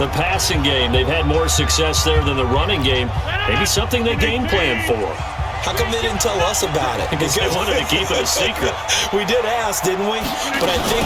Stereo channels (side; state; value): both; identical; correlation 1.00